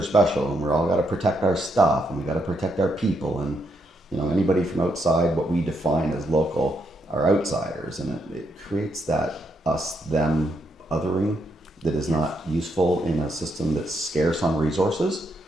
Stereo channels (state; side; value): normal; both; correlation 0.78